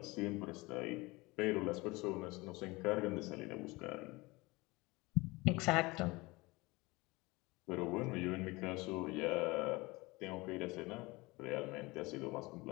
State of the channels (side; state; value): right; quieter; 22.9 dB